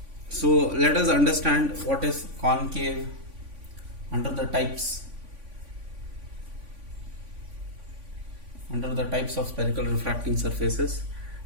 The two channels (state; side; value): late; left; 3.5 ms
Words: So let us understand what is concave under the types. Under the types of spherical refracting surfaces,